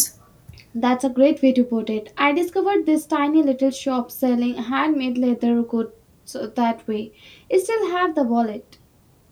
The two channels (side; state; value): both; identical; correlation 1.00